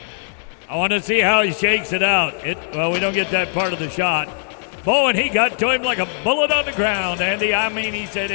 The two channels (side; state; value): right; silent; digital silence